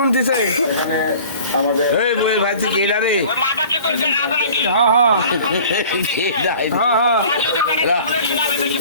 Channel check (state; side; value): inverted; both; correlation -0.46